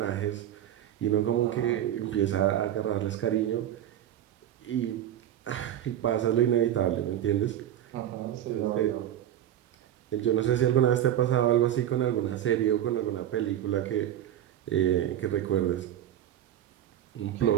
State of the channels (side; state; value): left; quieter; 11.4 dB